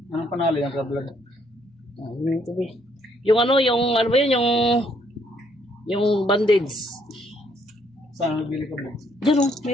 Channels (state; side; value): normal; both; correlation 0.69